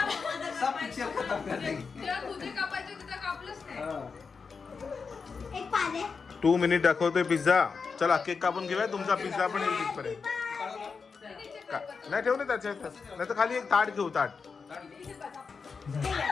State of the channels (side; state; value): right; quieter; 5.2 dB